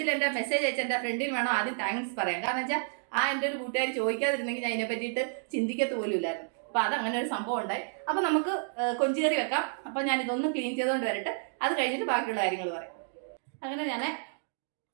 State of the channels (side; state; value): left; silent; digital silence